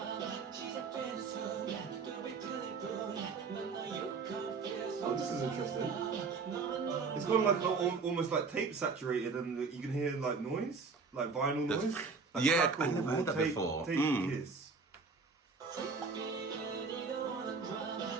Oh, this is interesting. It's got like almost like tape saturated, and you can hear like noise, like vinyl noise. Like Yeah, crackle I never heard or that tape, before. Tape kiss.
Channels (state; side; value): quieter; left; 4.7 dB